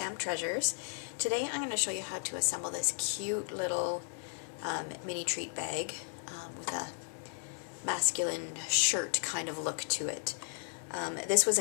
Treasures. Today I'm going to show you how to assemble this cute little mini treat bag with a masculine shirt kind of look to it. This was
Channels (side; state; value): right; silent; 55 dB below the other